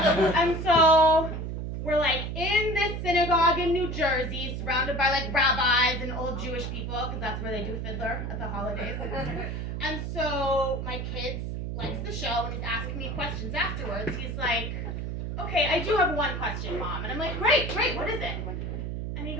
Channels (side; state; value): right; noise; hum, 4 dB below the sound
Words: And so we're like in this synagogue in New Jersey, surrounded by like rabbis and old Jewish people, because that's where they do Fiddler at the holidays. And so my kid likes the show, and he's asking me questions afterwards. He's like, okay, I do have one question, Mom. And I'm like, great, what is it? And he